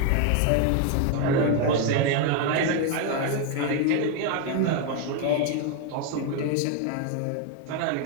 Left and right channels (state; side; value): different; both; correlation 0.01